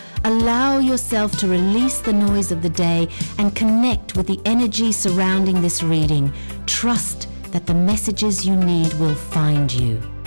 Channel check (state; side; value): inverted; both; correlation -1.00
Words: allow yourself to release the noise of the day and connect with the energy surrounding this reading. Trust that the messages you need will find you.